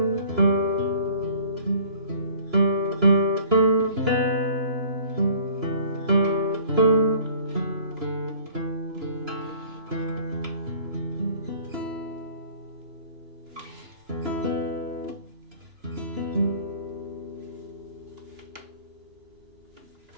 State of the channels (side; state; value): left; late; 3.0 ms